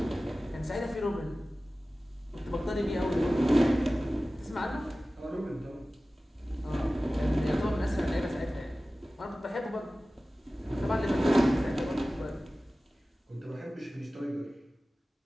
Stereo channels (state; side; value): normal; both; correlation 0.96